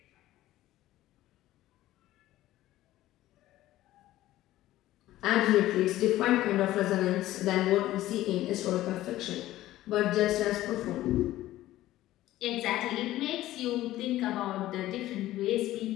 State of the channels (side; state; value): right; quieter; 15.1 dB